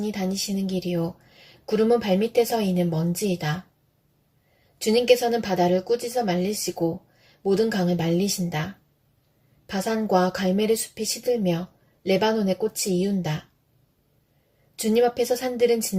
다니시는 길이요. 구름은 발밑에서 이는 먼지이다. 주님께서는 바다를 꾸짖어 말리시고 모든 강을 말리신다. 바산과 갈멜의 숲이 시들며 레바논의 꽃이 이운다. 주님 앞에서 산들은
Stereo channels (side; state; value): both; identical; correlation 1.00